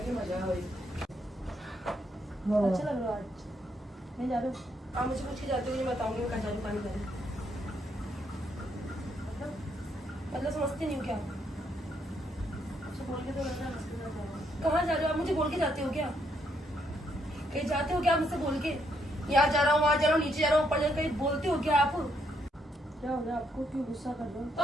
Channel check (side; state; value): both; normal; correlation 0.75